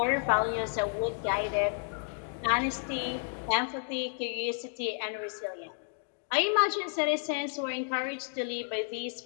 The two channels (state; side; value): silent; right; 57 dB below the other